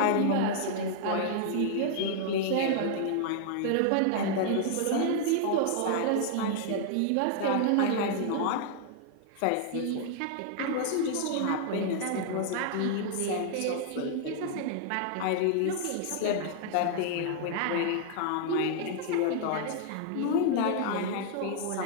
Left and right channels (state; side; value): different; both; correlation -0.01